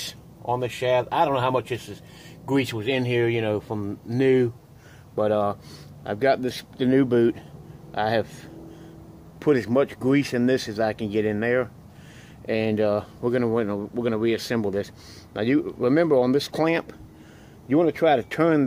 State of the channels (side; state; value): both; identical; correlation 1.00